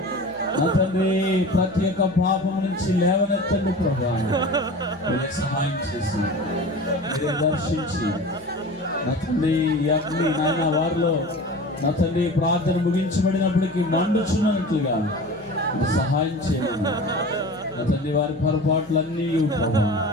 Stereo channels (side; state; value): left; noise; hum, 26 dB below the sound